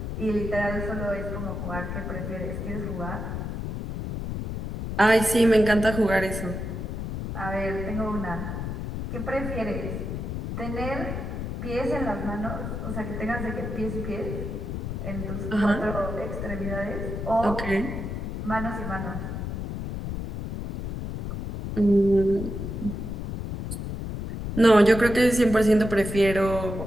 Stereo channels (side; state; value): left; noise; rumble, 5 dB below the sound